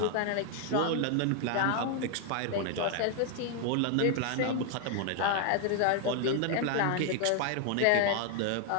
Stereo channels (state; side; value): different; both; correlation 0.00